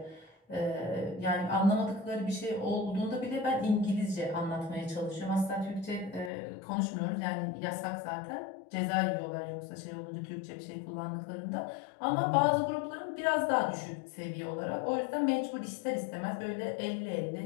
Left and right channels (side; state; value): right; drops out; at 6.3 s